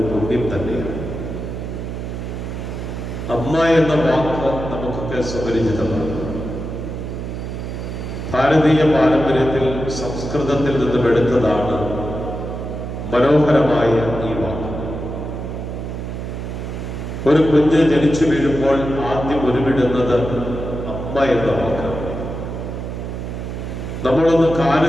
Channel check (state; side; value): noise; right; hum, 6 dB below the sound